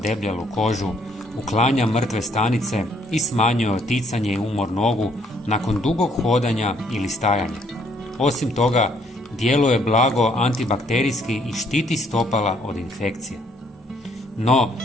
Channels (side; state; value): both; normal; correlation 0.66